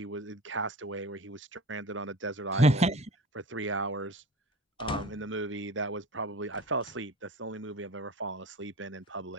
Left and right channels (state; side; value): normal; both; correlation 0.36